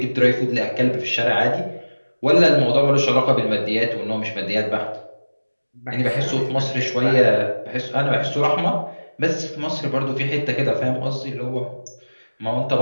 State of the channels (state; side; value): inverted; both; correlation -1.00